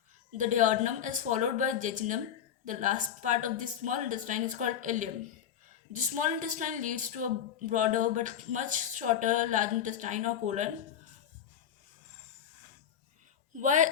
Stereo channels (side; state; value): right; quieter; 9.1 dB